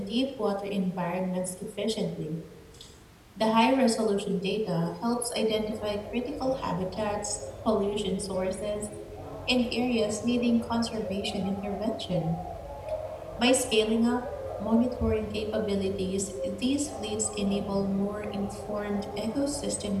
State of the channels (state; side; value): identical; both; correlation 1.00